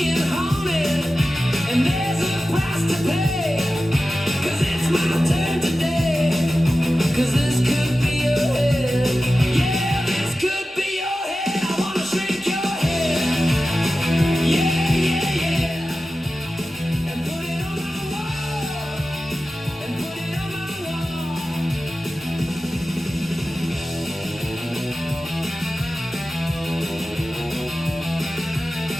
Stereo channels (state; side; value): normal; both; correlation 0.94